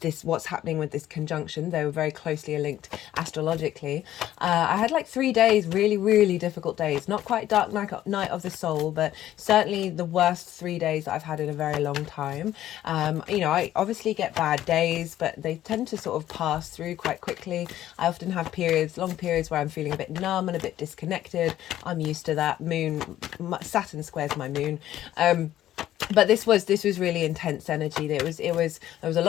what's happening with this conjunction, they were very closely linked astrologically. I had like 3 days, really difficult days, not quite dark night of the soul, but certainly the worst 3 days that I've had in a very long time. You know, I obviously get bad days, but they tend to sort of pass through quite quickly. I often have long periods where I'm feeling a bit numb and a bit disconnected. I'm used to that. Saturn squares my moon. But this was really intense energy. There was a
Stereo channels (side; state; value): right; quieter; 12.9 dB